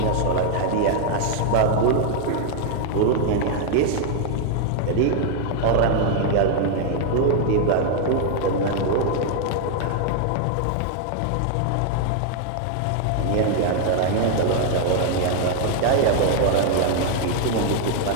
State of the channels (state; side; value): different; both; correlation 0.00